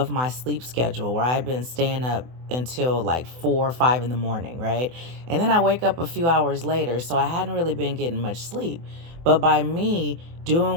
my sleep schedule where I'd been staying up until like 4 or 5 in the morning, right? And then I wake up a few hours later, so I hadn't really been getting much sleep. But by me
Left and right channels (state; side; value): late; left; 24 ms